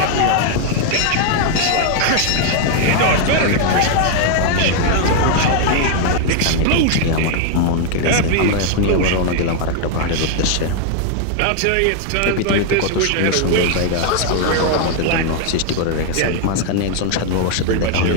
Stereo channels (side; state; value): both; different; correlation 0.00